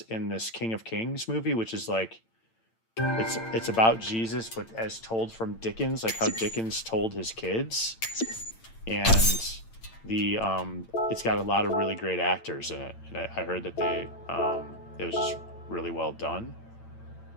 in this King of Kings movie, which is like... It's about Jesus, but as told from Dickens, like how Dickens told his kids. And the it's got a lot of really great actors in it. And I heard that it was just really well done.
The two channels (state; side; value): late; right; 8.9 ms